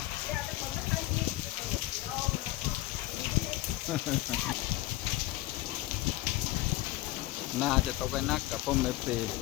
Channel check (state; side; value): quieter; right; 17.6 dB